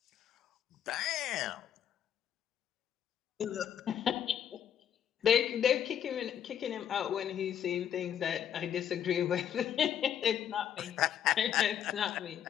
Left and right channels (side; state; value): right; quieter; 9.5 dB